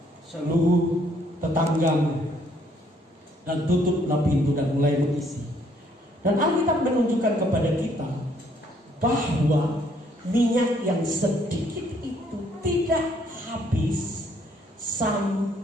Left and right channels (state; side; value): normal; both; correlation 0.67